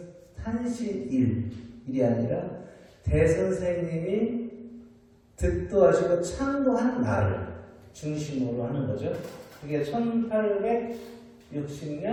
탄신일이 아니라 대선생님이 득도하시고 창도한 날을 중심으로 하는 거죠. 그게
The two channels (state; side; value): identical; both; correlation 1.00